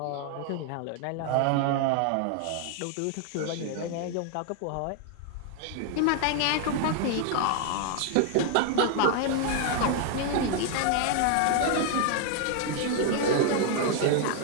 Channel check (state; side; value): different; both; correlation 0.00